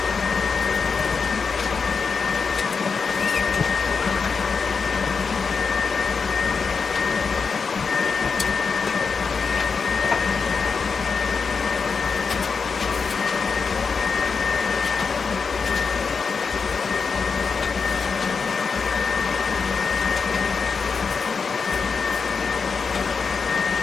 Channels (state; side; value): quieter; right; 5.3 dB